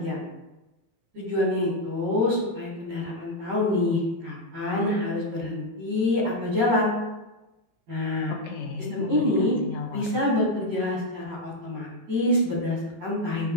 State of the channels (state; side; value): late; left; 18 ms